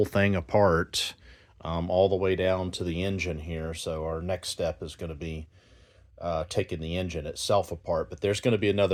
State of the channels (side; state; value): both; identical; correlation 1.00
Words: thing apart, all the way down to the engine here. So our next step is going to be taking the engine itself apart, but there's going to be